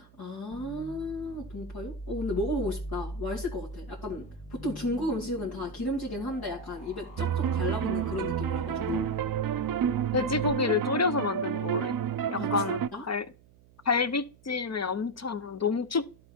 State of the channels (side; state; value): right; noise; hum, 27 dB below the sound